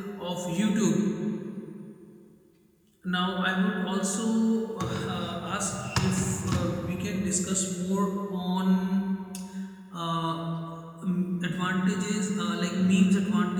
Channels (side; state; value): both; identical; correlation 1.00